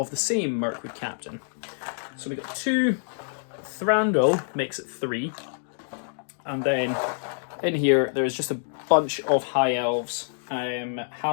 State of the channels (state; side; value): silent; right; digital silence